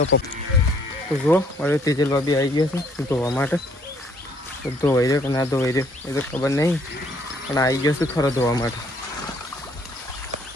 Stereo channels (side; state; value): both; normal; correlation 0.64